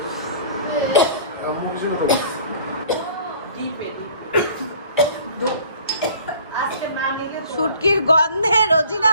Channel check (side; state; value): both; inverted; correlation -0.50